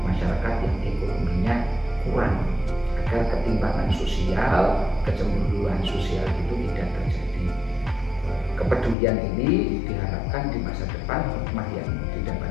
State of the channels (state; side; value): drops out; right; at 9.0 s